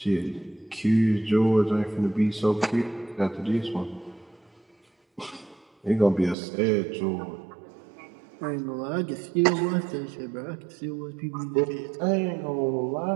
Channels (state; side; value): drops out; left; at 6.4 s